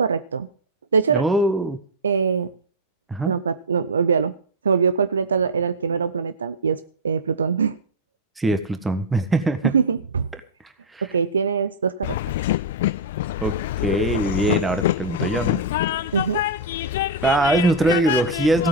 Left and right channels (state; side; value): normal; both; correlation -0.04